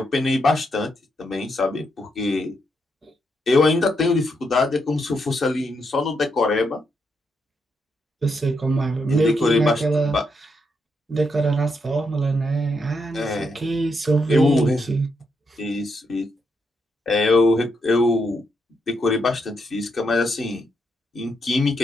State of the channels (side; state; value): both; normal; correlation 0.80